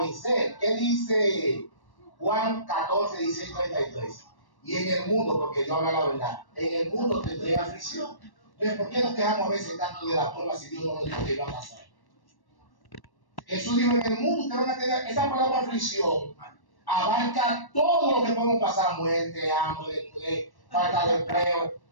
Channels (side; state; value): right; late; 1.1 ms